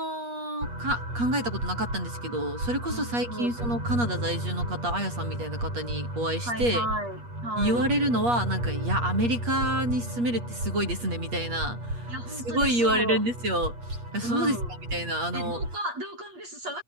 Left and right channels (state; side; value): late; left; 8.4 ms